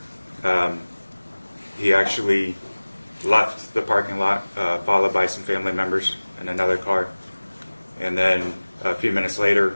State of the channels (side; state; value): both; inverted; correlation -1.00